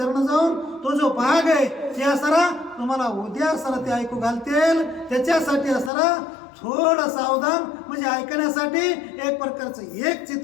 जाऊन तो जो भाग आहे ते असणारा तुम्हाला उद्या असणारा ते ऐकू घालतील. त्याच्यासाठी असणारा थोडं सावधान म्हणजे ऐकण्यासाठी एक प्रकारचं एक चित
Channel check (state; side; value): drops out; right; at 5.9 s